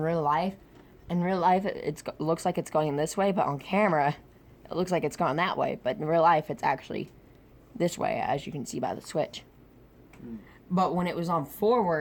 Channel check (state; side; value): identical; both; correlation 1.00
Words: life, it looks like it's going this way, but on camera, it looks like it's going that way. But in real life, it's actually this way, as you can see by the switch. But when it was on